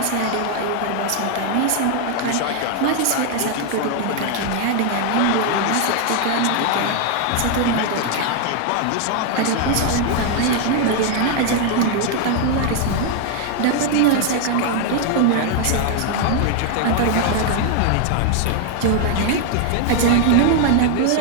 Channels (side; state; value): both; different; correlation 0.00